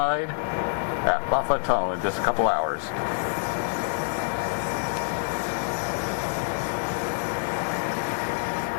at Moffat Tunnel in just a couple hours.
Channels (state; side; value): silent; right; digital silence